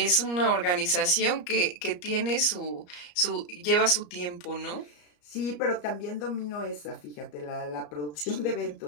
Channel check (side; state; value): right; late; 34 ms